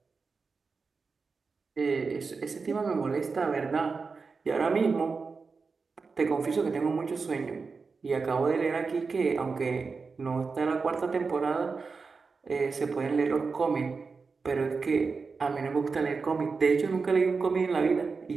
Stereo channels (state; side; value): quieter; left; 4.7 dB